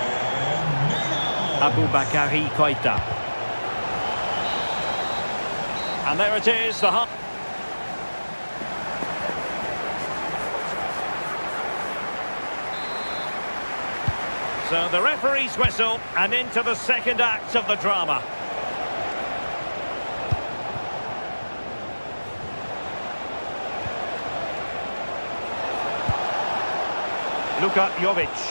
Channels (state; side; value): inverted; both; correlation -1.00